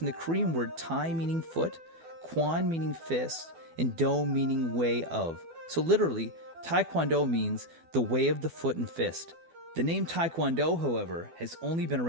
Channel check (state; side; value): late; left; 12 ms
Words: the Korean word Tae meaning foot, Kwon meaning fist, and Do meaning way of. So literally, Tae Kwon Do means the way of the foot and fist. The name Tae Kwon Do, however, has only been